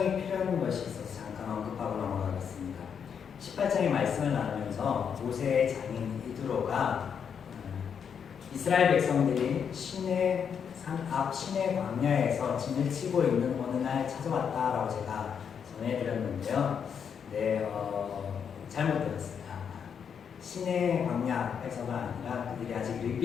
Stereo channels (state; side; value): quieter; right; 7.3 dB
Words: 필요한 것이 있어서 잠깐 언급하고 넘어가겠습니다. 18장의 말씀을 나누면서 모세의 장인 이드로가 이스라엘 백성들이 시내 산 앞 시내 광야에서 진을 치고 있는 어느 날 찾아왔다라고 제가 전해드렸는데요. 잘못 들었습니다. 시내 광야에서가 아니라 그들이 아직